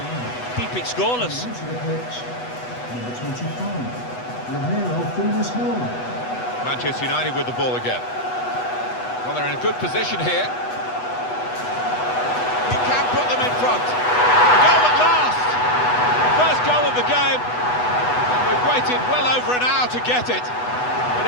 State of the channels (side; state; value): right; late; 8.1 ms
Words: keep it scoreless. Onto the pitch, number 25, Romero Funes-Mori. Manchester United with the ball again. Well, they're in a good position here. He can put them in front. A goal at last! First goal of the game. And we've waited well over an hour to get it.